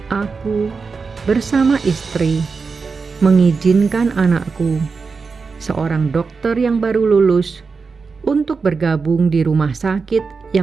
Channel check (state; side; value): quieter; left; 4.8 dB